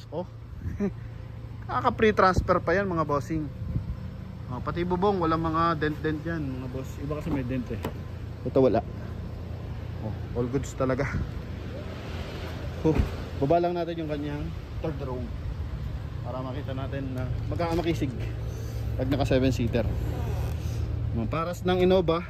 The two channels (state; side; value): identical; both; correlation 1.00